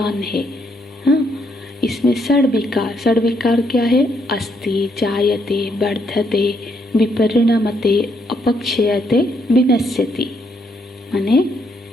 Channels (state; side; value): normal; both; correlation 0.74